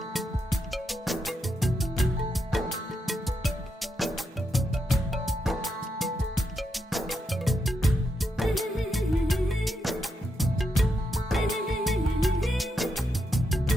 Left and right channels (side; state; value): both; normal; correlation 0.83